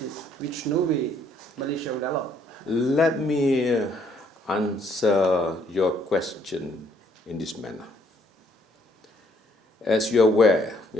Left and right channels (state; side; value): normal; both; correlation 0.66